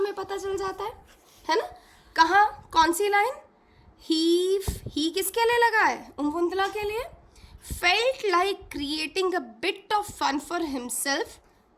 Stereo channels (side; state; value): both; identical; correlation 1.00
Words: पता चल जाता है ना? कहाँ, कौन सी लाइन? ही किसके लिए लगा है? उम्वुंदला के लिए. Felt like creating a bit of fun for himself.